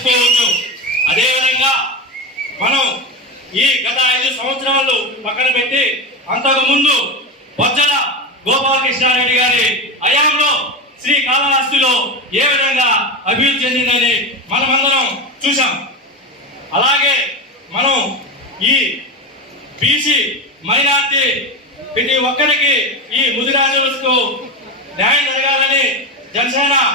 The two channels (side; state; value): both; normal; correlation 0.19